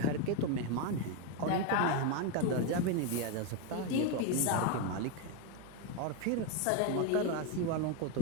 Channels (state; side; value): different; both; correlation 0.02